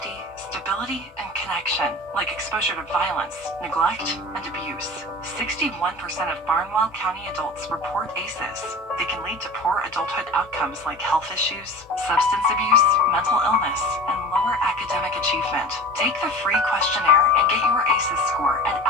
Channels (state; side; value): normal; both; correlation 0.37